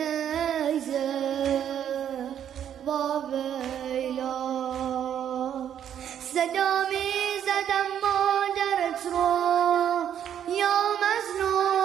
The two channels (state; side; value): quieter; left; 9.6 dB